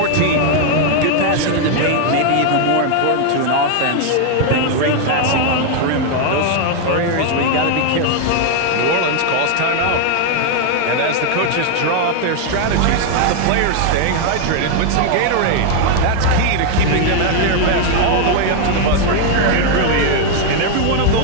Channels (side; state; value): both; different; correlation 0.00